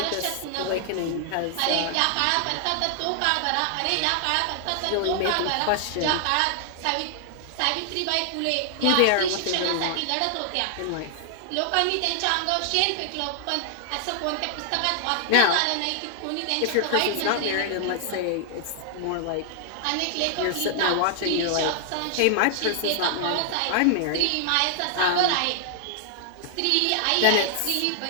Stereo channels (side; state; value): both; different; correlation 0.00